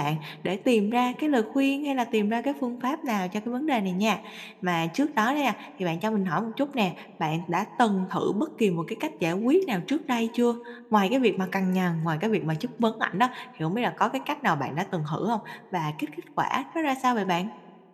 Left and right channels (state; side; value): identical; both; correlation 1.00